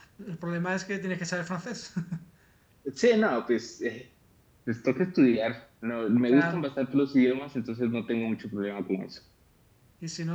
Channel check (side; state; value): both; identical; correlation 1.00